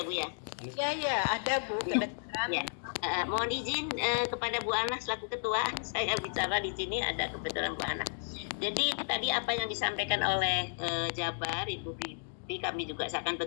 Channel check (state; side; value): silent; right; digital silence